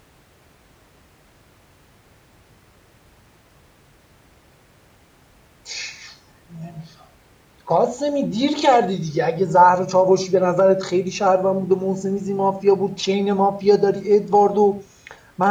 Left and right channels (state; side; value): identical; both; correlation 1.00